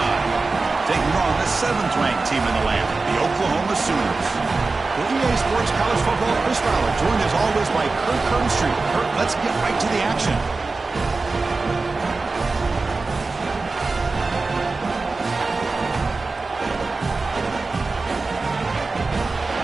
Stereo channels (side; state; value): left; quieter; 3.8 dB